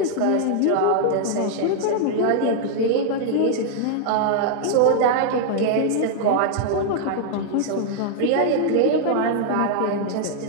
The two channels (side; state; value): both; different; correlation -0.01